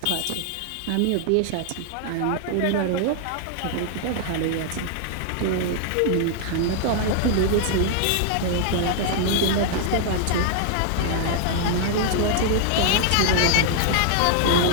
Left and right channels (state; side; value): different; both; correlation 0.00